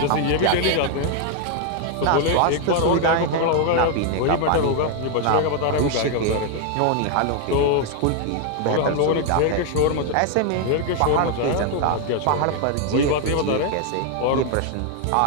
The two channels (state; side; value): different; both; correlation 0.00